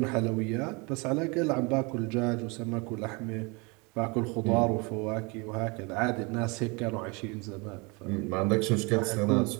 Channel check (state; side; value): quieter; left; 28.9 dB